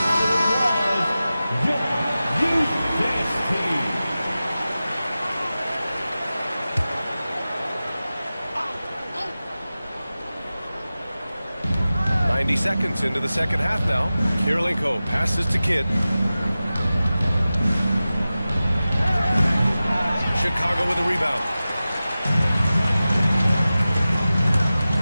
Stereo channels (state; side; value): inverted; both; correlation -0.95